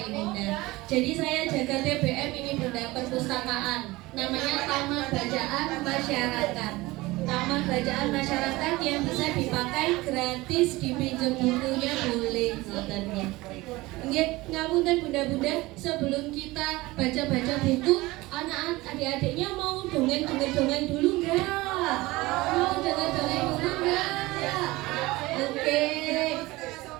bunda. Jadi saya jaga TBM ini bunda, perpustakaan. Namanya Taman Bacaan Masyarakat. Taman Bacaan Masyarakat yang bisa dipakai gratis, dipinjam bukunya boleh ngotennya. Nggih, ngapunten bunda-bunda, sebelum kita baca-baca buku, anak-anak adik-adiknya mau dongeng dulu enggak? Mau dongeng dulu enggak? Oke.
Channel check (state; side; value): quieter; left; 20.4 dB